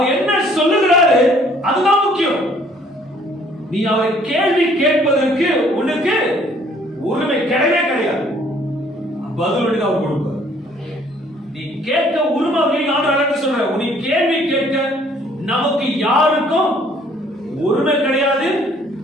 என்ன சொல்லுகிறாரு அதுதான் முக்கியம். நீ அவரை கேள்வி கேட்பதற்கு உனக்கு உரிமை கிடையவே கிடையாது. பதில் அவர் கொடுப்பார். நீ கேட்க உரிமை சொல்ற, நீ கேள்வி கேட்க நமக்கு யாருக்கும் உரிமை கிடையாது,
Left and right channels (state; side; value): normal; both; correlation 0.60